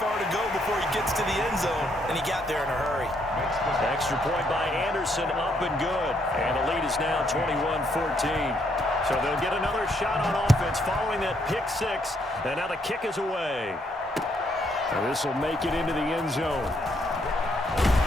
to go before he gets to the end zone, and he got there in a hurry. Extra point by Anderson, up and good. And the lead is now 21-14. So they'll get another shot on offense following that pick 6, and now the kick is away. And this will make it into the end zone.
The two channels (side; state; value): both; normal; correlation 0.73